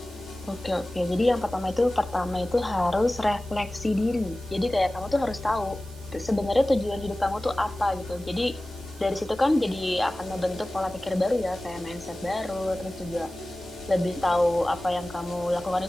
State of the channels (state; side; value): noise; right; hiss, 23 dB below the sound